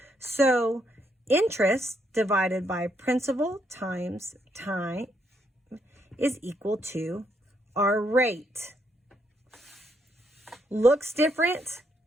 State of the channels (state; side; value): normal; both; correlation 0.75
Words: So interest divided by principal times time is equal to our rate. Looks different,